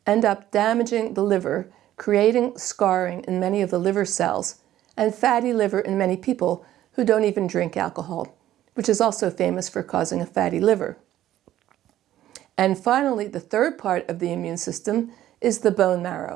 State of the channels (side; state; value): left; quieter; 13.1 dB